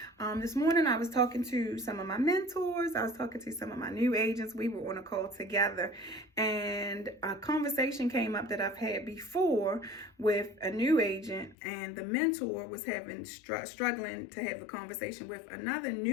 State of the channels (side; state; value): right; drops out; at 11.6 s